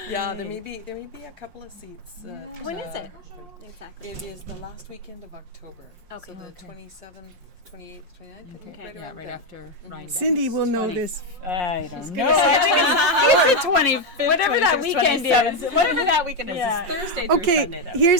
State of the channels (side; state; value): left; late; 5.6 ms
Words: Yeah, there may be a couple of seats. When is it? Exactly. It is the last weekend of October. Okay. So the Okay. 27th, 28th, 29th. Okay, yeah, right after Ryan. Cindy will know this. I don't know. I think it's the 25th, Whatever that 26th, weekend 27th. Whatever that weekend is. Yeah. It's Thursday through Okay, Sunday, though.